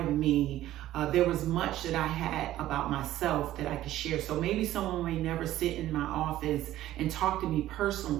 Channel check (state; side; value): quieter; left; 14.0 dB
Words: me there was much that I had about myself that I could share. So maybe someone may never sit in my office and talk to me